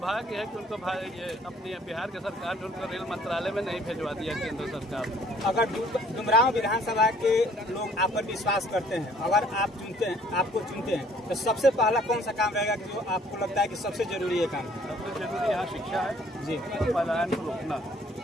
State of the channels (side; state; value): both; normal; correlation 0.59